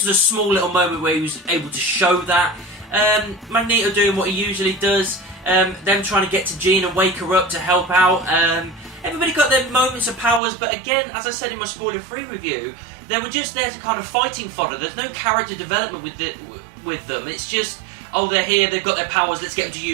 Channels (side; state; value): left; drops out; at 10.4 s